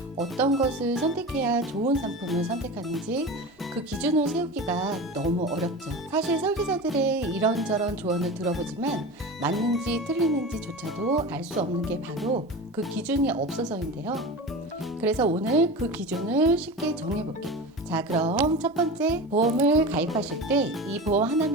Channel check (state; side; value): normal; both; correlation 0.29